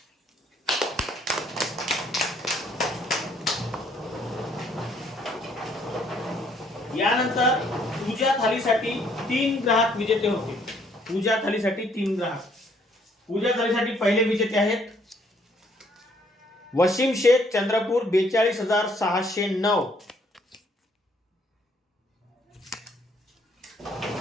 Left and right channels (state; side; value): normal; both; correlation 0.66